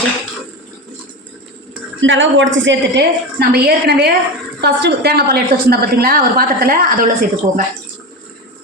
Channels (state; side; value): normal; both; correlation 0.22